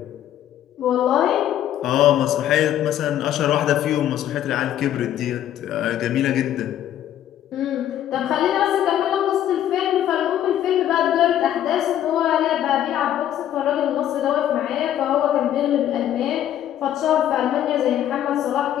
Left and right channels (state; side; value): quieter; right; 11.3 dB